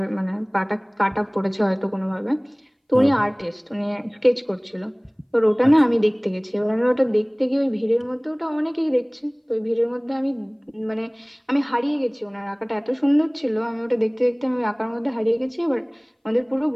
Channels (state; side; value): identical; both; correlation 1.00